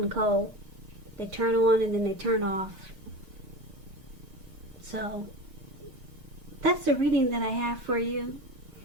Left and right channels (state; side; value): late; left; 6.5 ms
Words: cold. They turn on and then they turn off. So that's the reading that I have for you.